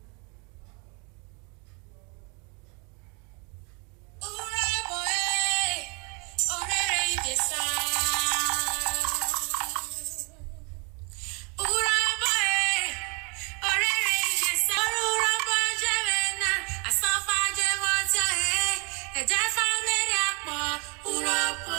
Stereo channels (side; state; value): left; quieter; 32.8 dB